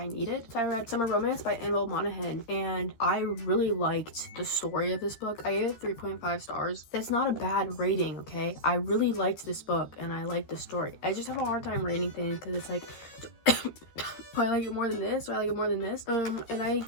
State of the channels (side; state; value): right; late; 13 ms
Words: needed. So I read Summer Romance by Annabelle Monaghan, and I really liked the story of this book. I gave it 3.5 stars. That's not a bad rating, okay? I really liked this book and I liked the story. I just have a hard time rating things because it's like, do I like it more than this? Do I like it more than this? And did I